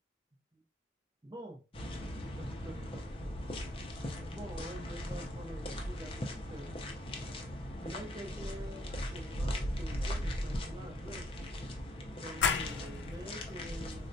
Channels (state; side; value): normal; both; correlation 0.65